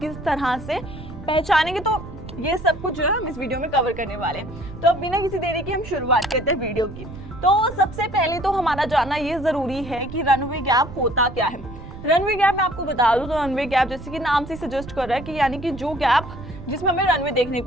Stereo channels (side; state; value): right; noise; rumble, 13 dB below the sound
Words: तरह से पहचानेंगे। तो ये सब कुछ जो है हम इस वीडियो में कवर करने वाले हैं। तो अब बिना किसी देरी की हम शुरुआत करते हैं वीडियो की। तो सबसे पहले तो हमारा जानना ये जरूरी है कि रनअवे गैप होता क्या है। रनअवे गैप मैं आपको बता दूं तो रनअवे गैप जैसे कि नाम से सजेस्ट कर रहा है कि यानी कि जो गैप जिसमें हमें रनवे देखने